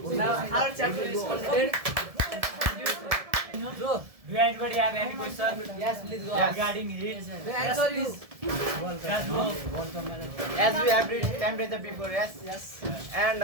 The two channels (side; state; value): left; late; 1.7 ms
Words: Now our chapter is completed. So, do anybody have any question? Yes, please go. Regarding heat? Answer is Just go. As we have read temperature before, yes? yes. And